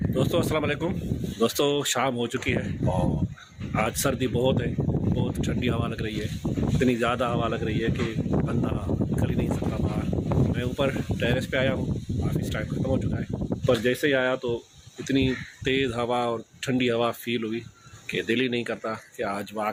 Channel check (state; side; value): identical; both; correlation 1.00